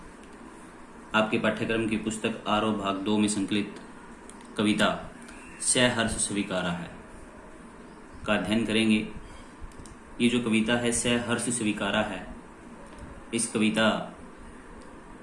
आपके पाठ्यक्रम की पुस्तक आरोह भाग 2 में संकलित कविता सहर्ष स्वीकारा है का अध्ययन करेंगे। ये जो कविता है सहर्ष स्वीकारा है, इस कविता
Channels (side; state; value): both; identical; correlation 1.00